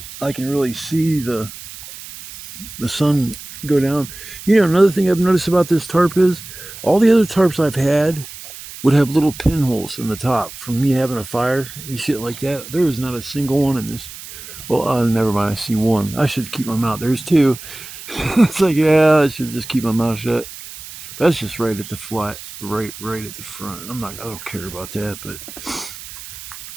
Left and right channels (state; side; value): noise; right; hiss, 14 dB below the sound